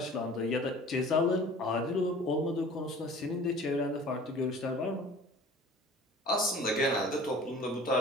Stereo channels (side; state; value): both; normal; correlation 0.45